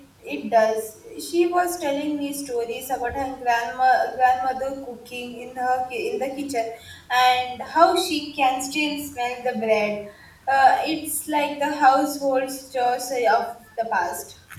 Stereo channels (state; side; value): identical; both; correlation 1.00